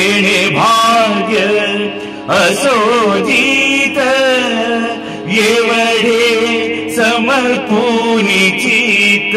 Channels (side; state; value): both; identical; correlation 1.00